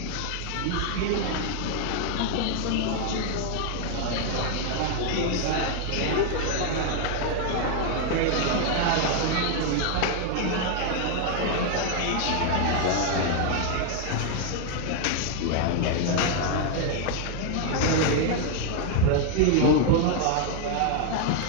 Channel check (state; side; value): different; both; correlation 0.00